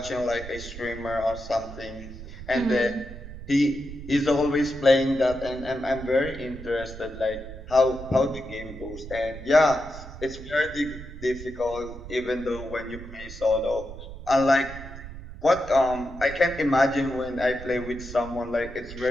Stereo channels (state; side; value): noise; right; rumble, 13 dB below the sound